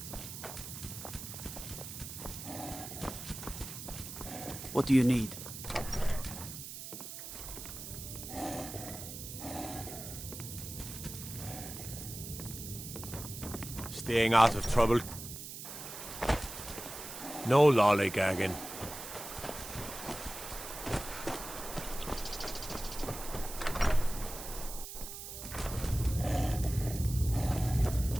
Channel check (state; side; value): noise; right; hiss, 9 dB below the sound